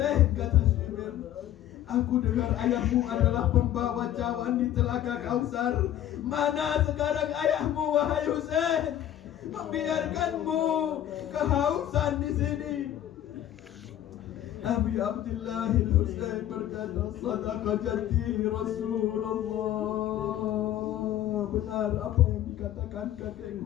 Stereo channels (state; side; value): quieter; right; 11.8 dB